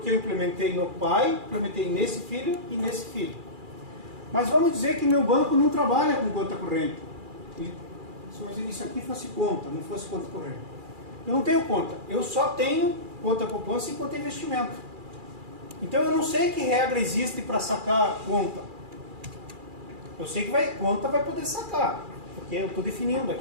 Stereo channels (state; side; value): late; left; 2.4 ms